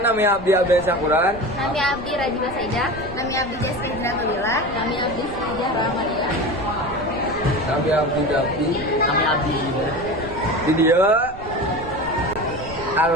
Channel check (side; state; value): right; noise; rumble, 15 dB below the sound